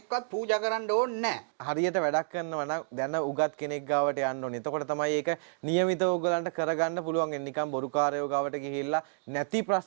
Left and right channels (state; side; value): silent; left; digital silence